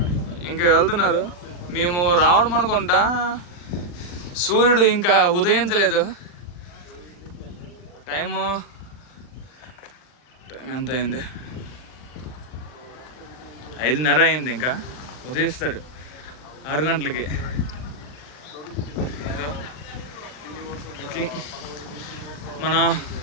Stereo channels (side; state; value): right; late; 40 ms